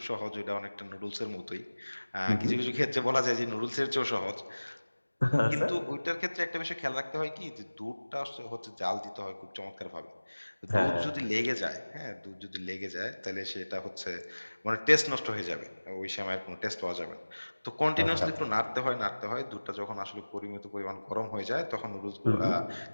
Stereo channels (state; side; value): inverted; both; correlation -1.00